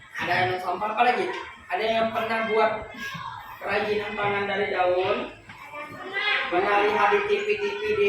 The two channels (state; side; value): identical; both; correlation 1.00